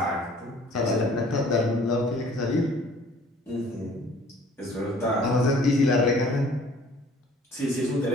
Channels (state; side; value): normal; both; correlation 0.53